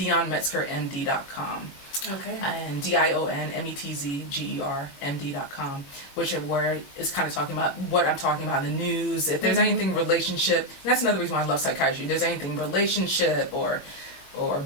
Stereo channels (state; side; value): late; right; 21 ms